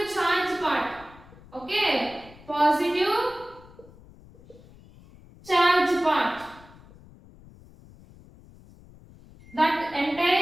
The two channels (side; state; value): left; noise; rumble, 23 dB below the sound